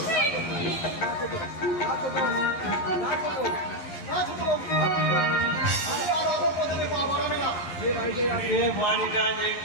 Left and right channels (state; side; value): late; right; 11 ms